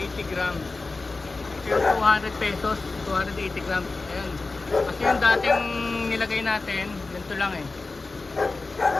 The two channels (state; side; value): quieter; right; 3.6 dB